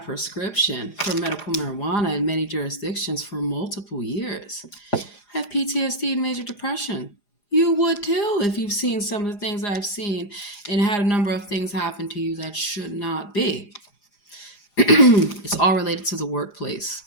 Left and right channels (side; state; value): right; late; 4.9 ms